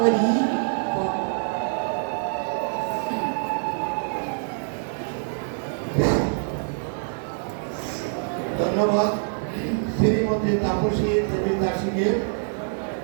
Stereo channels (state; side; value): silent; left; digital silence